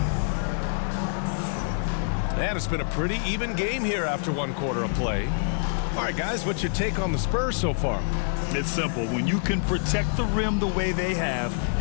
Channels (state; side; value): silent; right; 56 dB below the other